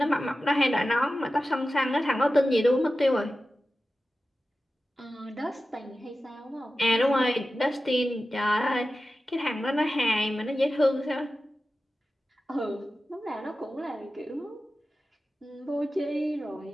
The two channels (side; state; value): both; normal; correlation 0.94